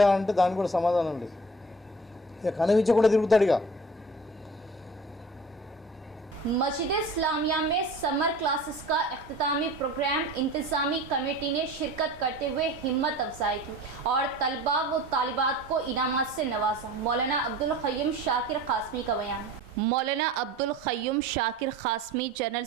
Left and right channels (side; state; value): both; normal; correlation 0.42